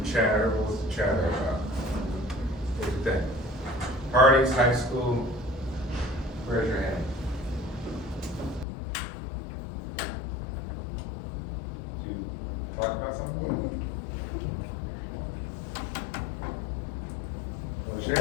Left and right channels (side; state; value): right; drops out; at 8.7 s